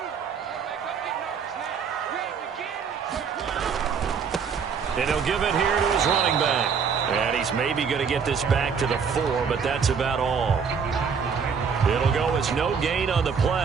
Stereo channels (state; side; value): quieter; left; 6.3 dB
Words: And he'll give it here to his running back. And he's maybe going to get this back to the 4, but that's about all. It'll go as no gain on the